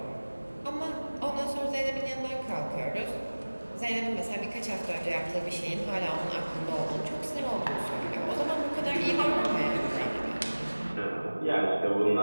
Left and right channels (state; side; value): inverted; both; correlation -1.00